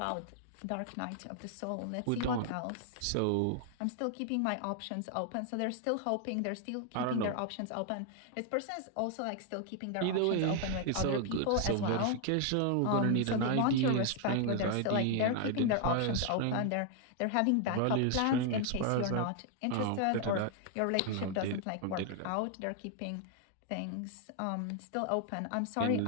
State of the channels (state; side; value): different; both; correlation 0.00